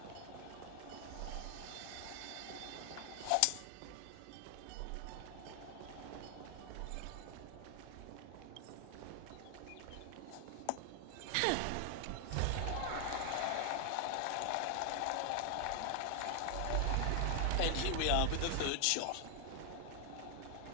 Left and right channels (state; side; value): different; both; correlation 0.00